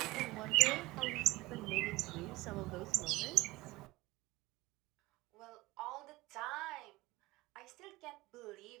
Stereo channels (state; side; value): quieter; left; 20.2 dB